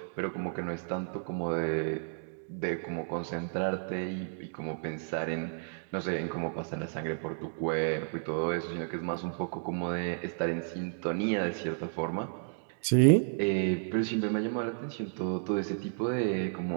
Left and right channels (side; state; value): left; silent; digital silence